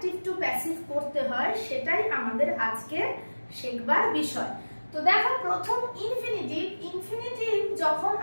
টু প্যাসিভ করতে হয় সেটাই আমাদের আজকে শেখবার বিষয়। তো দেখো, প্রথম ইনফিনিটিভ যখন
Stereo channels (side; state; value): both; inverted; correlation -1.00